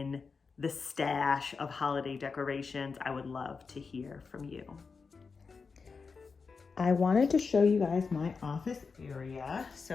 the stash of holiday decorations? I would love to hear from you. I wanted to show you guys my office area.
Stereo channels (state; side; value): quieter; right; 4.9 dB